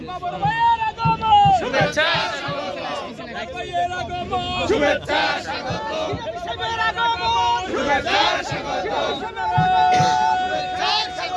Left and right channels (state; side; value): identical; both; correlation 1.00